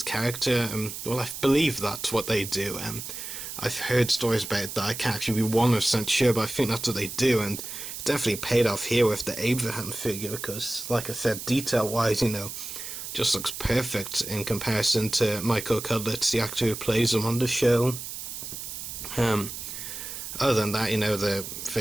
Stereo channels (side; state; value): right; noise; hiss, 8 dB below the sound